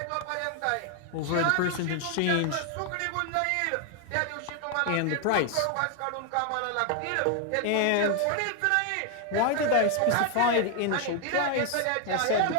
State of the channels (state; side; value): different; both; correlation 0.00